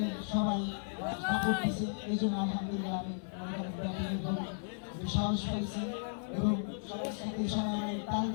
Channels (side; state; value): right; silent; digital silence